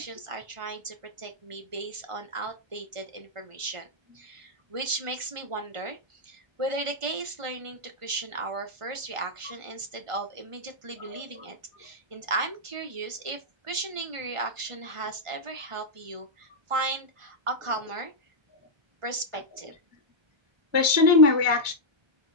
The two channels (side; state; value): left; late; 1.4 ms